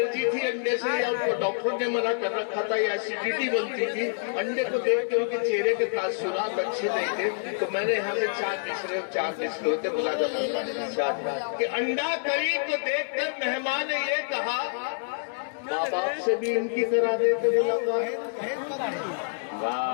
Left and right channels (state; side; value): silent; right; digital silence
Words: थी अंडे से, या उनको डॉक्टर ने मना कर रखा था, या एसिडिटी बनती थी। अंडे को देख के उनके चेहरे के तासुरात अच्छे नहीं थे। तो मैंने यहाँ से 4 मिसरे होते बुला कि अंडा करी को देखकर मेहमान ने ये कहा माँ बाप से भी इनकी करा देते मुलाकात।